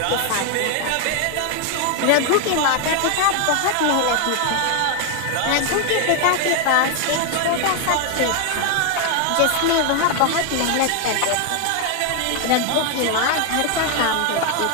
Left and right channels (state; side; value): different; both; correlation 0.01